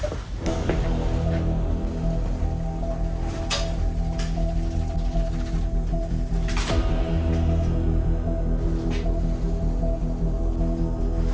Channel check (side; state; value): both; identical; correlation 1.00